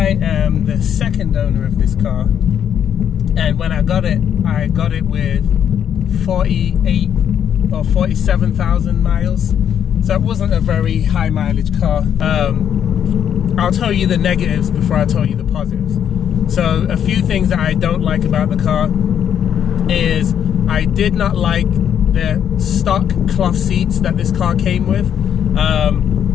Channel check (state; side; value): quieter; right; 9.0 dB